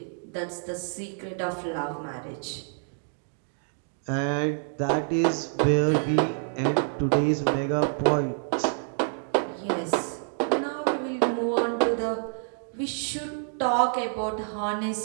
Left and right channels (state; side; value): silent; left; digital silence